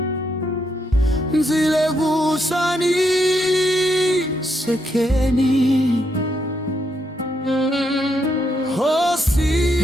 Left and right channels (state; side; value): normal; both; correlation 0.78